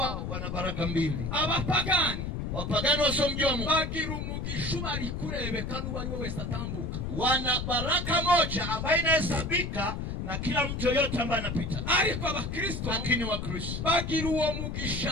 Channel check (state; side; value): noise; left; rumble, 4 dB below the sound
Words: wana baraka mbili. Abapagani wapagani wasiomjua Mungu bagira umugisha bari kurebeka n'uwo ari we wese atambuka. Wana baraka moja ambayo inahesabika na kila mtu yote ambaye anapita. Ariko Abakristo lakini Wakristo bagira uwo